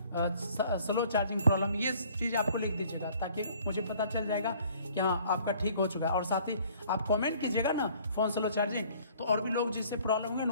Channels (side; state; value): both; inverted; correlation -0.56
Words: स्लो चार्जिंग प्रॉब्लम, ये चीज़ आपको लिख दीजिएगा, ताकि मुझे पता चल जाएगा कि हाँ आपका ठीक हो चुका है। और साथ ही आप कमेंट कीजिएगा ना फोन स्लो चार्जिंग, तो और भी लोग जिससे प्रॉब्लम होगी